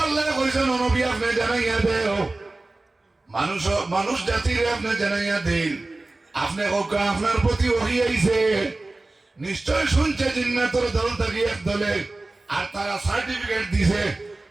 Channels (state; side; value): quieter; left; 3.0 dB